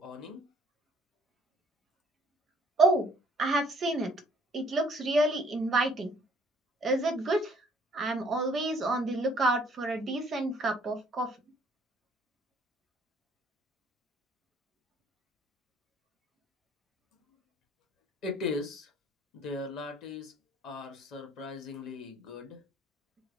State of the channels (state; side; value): normal; both; correlation 0.62